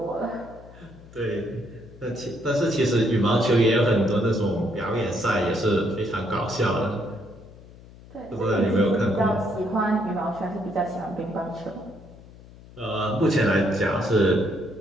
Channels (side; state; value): left; noise; hum, 20 dB below the sound